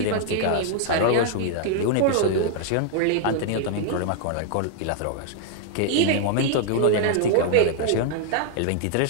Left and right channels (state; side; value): different; both; correlation -0.01